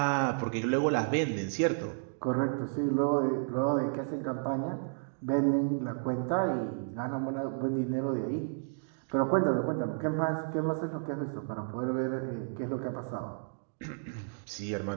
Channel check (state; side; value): silent; left; digital silence